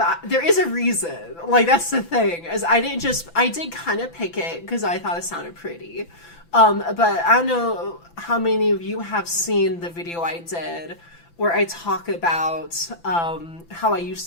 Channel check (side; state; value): right; late; 5.9 ms